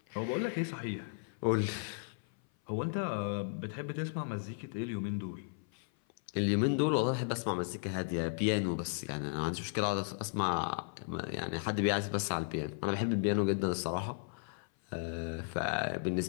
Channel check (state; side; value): silent; right; 54 dB below the other